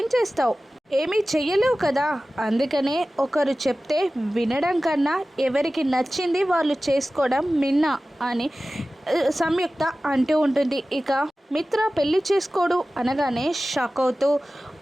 చేస్తావు? ఏమీ చెయ్యలేవు కదా. అందుకనే ఒకరు చెప్తే వినడం కన్నా ఎవరికి నచ్చింది వాళ్ళు చేసుకోవడం మిన్న అని సంయుక్త అంటూ ఉంటుంది. ఇక మిత్ర పెళ్లి చేసుకోడు అనగానే షాక్ అవుతూ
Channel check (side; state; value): both; normal; correlation 0.96